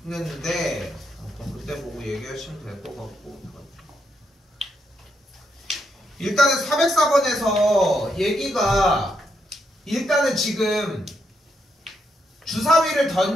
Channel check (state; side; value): normal; both; correlation 0.79